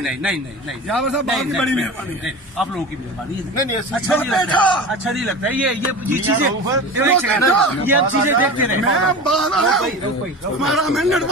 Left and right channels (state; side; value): normal; both; correlation 0.31